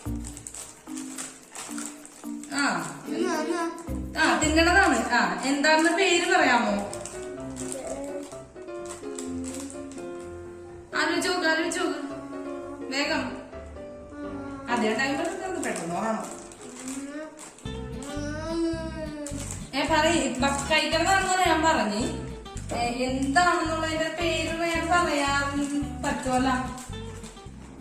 തിന്നണതാണ്. എന്താണെന്ന് പേര് പറയാമോ? ആലോചിച്ചോക്ക് വേഗം. അതേ ടൈം പെട്ടെന്ന് ഓർമ്മ കഴിക്കണമെന്നാണ് ഞാൻ പറഞ്ഞ്. എന്താണെന്നുള്ളതിന്റെ പേര് ഞാൻ പറയാൻ പറ്റുമല്ലോ.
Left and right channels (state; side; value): identical; both; correlation 1.00